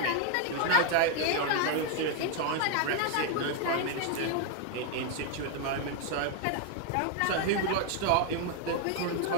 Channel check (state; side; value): different; both; correlation 0.00